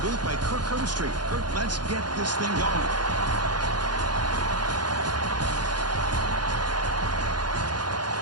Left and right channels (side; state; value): left; late; 0.70 ms